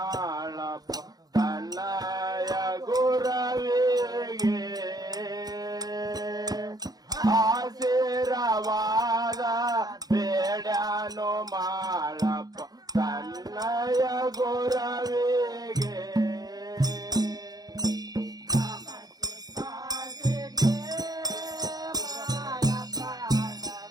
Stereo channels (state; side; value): late; left; 0.19 ms